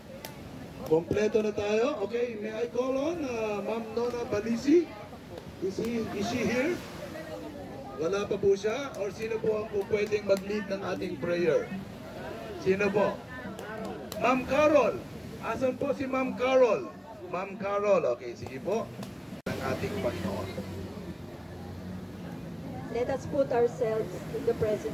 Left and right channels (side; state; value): both; identical; correlation 1.00